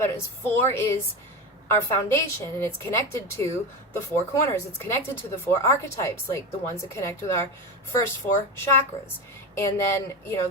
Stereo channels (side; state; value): both; normal; correlation 0.21